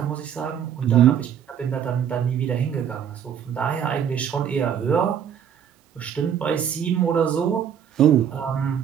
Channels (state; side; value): quieter; left; 8.7 dB